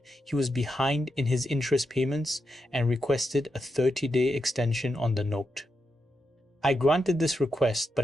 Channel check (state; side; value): normal; both; correlation 0.85